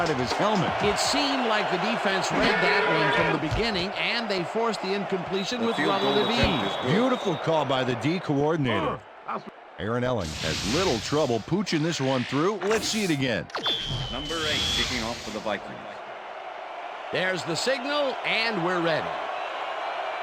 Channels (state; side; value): identical; both; correlation 1.00